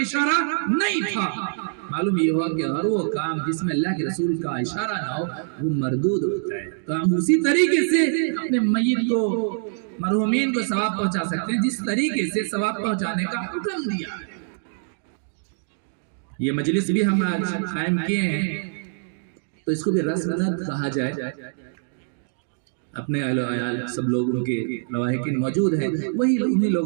نہیں تھا۔ معلوم یہ ہوا کہ ہر وہ کام جس میں اللہ کے رسول کا اشارہ نہ ہو وہ مردود ہوتا ہے۔ تو ہم اسی طریقے سے اپنے میت کو، مرحومین کو ثواب پہنچا سکتے ہیں جس طریقے سے ثواب پہنچانے کا حکم دیا ہے۔ یہ مجلس بھی ہم آج قائم کیے ہیں تو اس کو بھی رسمنت کہا جائے، اپنے اہل و عیال سب لوگوں کے لواحقین موجود ہیں، وہی انہی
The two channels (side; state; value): left; silent; digital silence